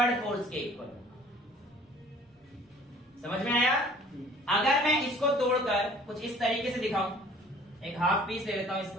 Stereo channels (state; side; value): normal; both; correlation 0.52